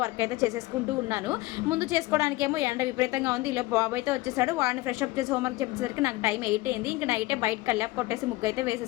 వర్క్ అయితే చేసేసుకుంటూ ఉన్నాను. ముందు చేసుకోవడానికేమో ఎండ విపరీతంగా ఉంది. ఇలా బాబు అయితే వచ్చేసాడు, వాడిని ఫ్రెష్ అప్ చేసి హోంవర్క్ చెప్పేసరికి నాకు టైం 8 అయింది. ఇంకా నైటే బయట కల్లాపు కొట్టేసి ముగ్గు అయితే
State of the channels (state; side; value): quieter; right; 19.7 dB